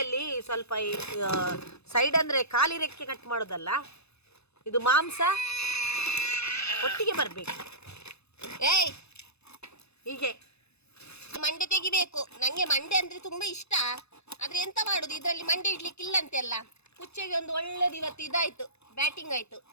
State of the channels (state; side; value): late; right; 0.79 ms